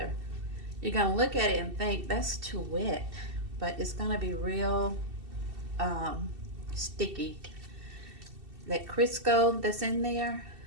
You're going to look at it and think that's too wet, but it's going to be real sticky. That Crisco that's in there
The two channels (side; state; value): left; late; 2.7 ms